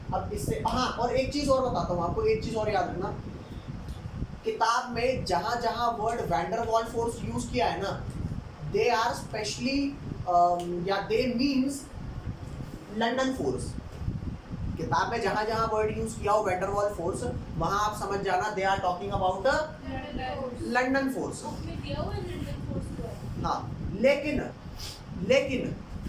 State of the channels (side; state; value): both; identical; correlation 1.00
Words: अब इससे हाँ, और एक चीज और बताता हूँ आपको, एक चीज और याद रखना, किताब में जहां जहां word van der Waal force use किया है ना, दे आर स्पेशली या दे मीन्स लंदन फोर्स। किताब में जहां जहां वर्ड यूज किया हो वैन डर वाल फोर्स, वहां आप समझ जाना they are talking about London force. हाँ, लेकिन